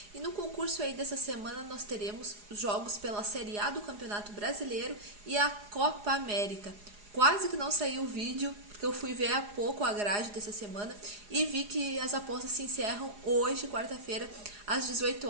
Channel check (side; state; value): left; late; 4.8 ms